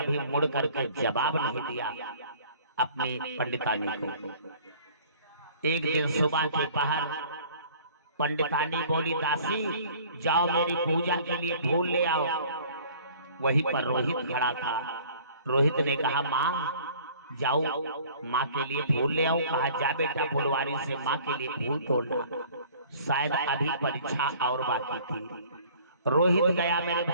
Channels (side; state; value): both; inverted; correlation -0.51